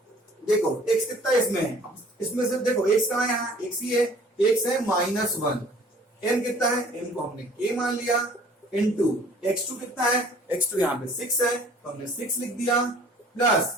देखो x कितना इसमें है, इसमें से देखो x कहां है, यहाँ x ही है, x है -1। m कितना है, m को हमने k मान लिया, इनटू x2 कितना है, x2 यहाँ पे 6 है तो हमने 6 लिख दिया,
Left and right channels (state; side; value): normal; both; correlation 0.52